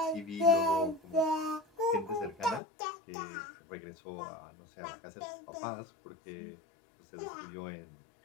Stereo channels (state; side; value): drops out; right; at 2.6 s